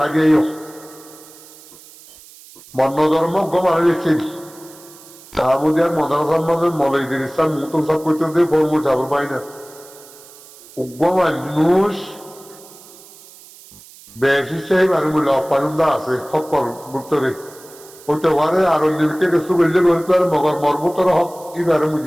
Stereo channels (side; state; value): right; noise; hiss, 21 dB below the sound